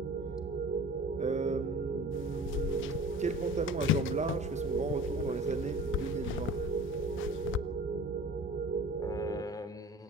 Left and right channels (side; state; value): both; normal; correlation 0.42